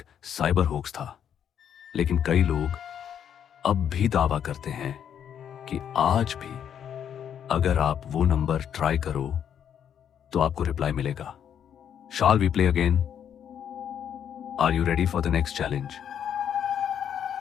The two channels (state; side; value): quieter; right; 8.9 dB